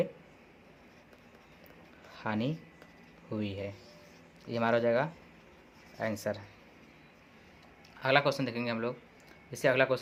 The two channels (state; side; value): identical; both; correlation 1.00